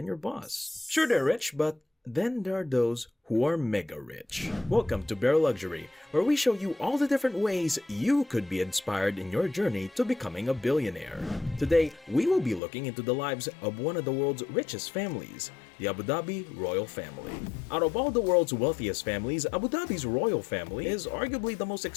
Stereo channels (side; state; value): right; drops out; at 12.6 s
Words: your boss. Sure, they're rich, but then there are those who are mega rich. Welcome to Bare Luxury, where we show you all the different ways you could be inspired in your journey to becoming a billionaire. Today, we will be looking into the lives of one of the world's richest families, the Abu Dhabi Royal Family. Out of all the world's wealthiest families, Abu Dhabi's royal family is arguably the most